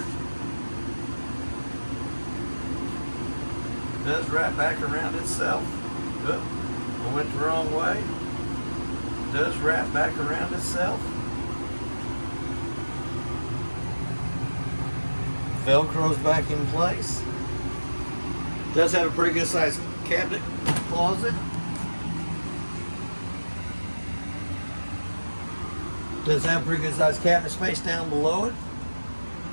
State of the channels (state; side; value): inverted; both; correlation -1.00